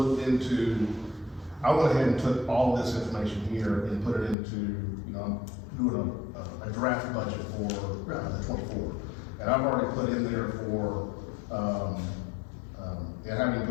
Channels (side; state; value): right; drops out; at 4.4 s